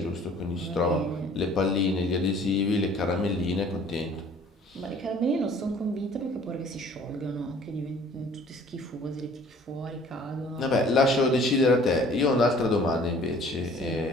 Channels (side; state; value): both; normal; correlation 0.53